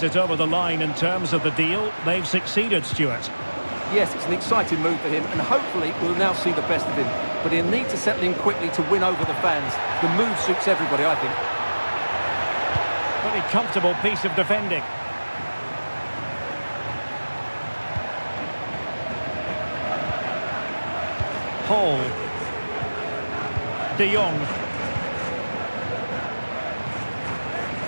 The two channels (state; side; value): inverted; both; correlation -1.00